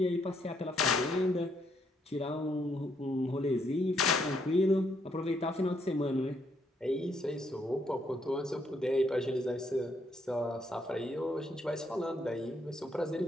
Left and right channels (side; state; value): both; normal; correlation 0.73